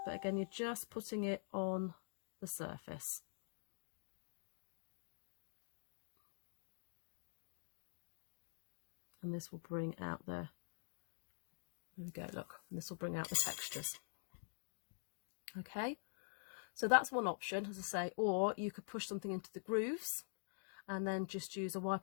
but again you're just putting it on the surface. And this will bring out the There we go, look, and this will bring out the textures. Okay, so that's one option, as I say, or you could push something into the grooves and then just use a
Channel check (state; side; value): silent; right; digital silence